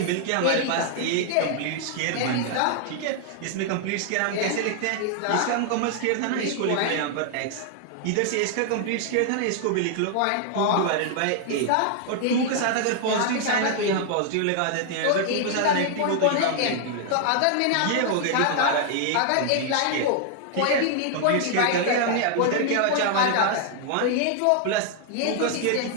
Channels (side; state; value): both; different; correlation 0.00